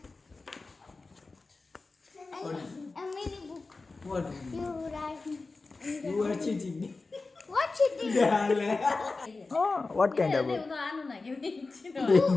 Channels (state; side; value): quieter; right; 3.7 dB